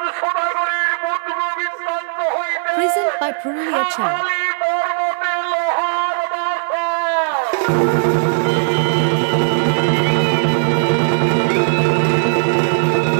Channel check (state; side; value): silent; left; digital silence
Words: সোনাগরীর মধুর বিস্তান্ত হইতে Present by Purulia Channel. পর্বতে লোহার বাসা।